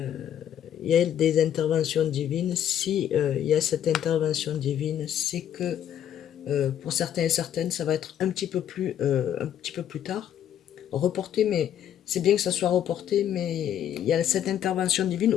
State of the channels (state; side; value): quieter; right; 10.1 dB